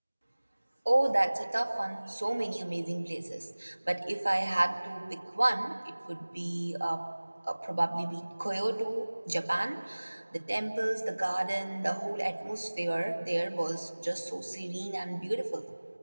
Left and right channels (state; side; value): inverted; both; correlation -1.00